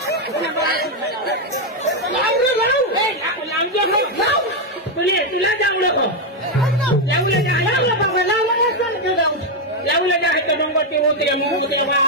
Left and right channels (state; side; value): normal; both; correlation 0.03